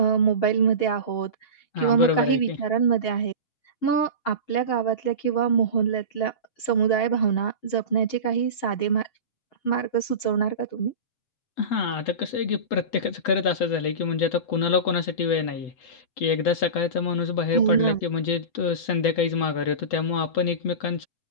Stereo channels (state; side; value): late; right; 8.1 ms